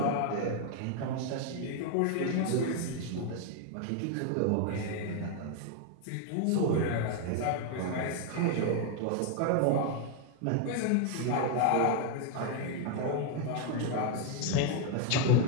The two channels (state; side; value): different; both; correlation 0.01